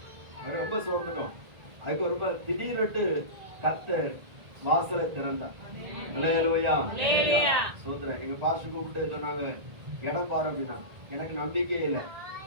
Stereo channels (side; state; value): left; late; 1.6 ms